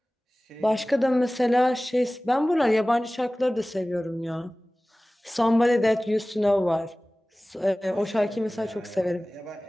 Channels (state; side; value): normal; both; correlation 0.98